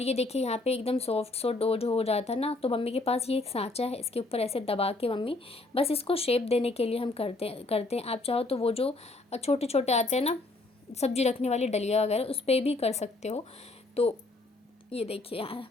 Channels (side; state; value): right; quieter; 3.1 dB